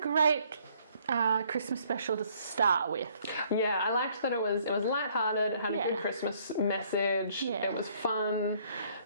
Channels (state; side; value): inverted; both; correlation -0.63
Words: Christmas special to start with. Yeah, I liked that it was lighthearted, it had a good Christmas message, it was fun.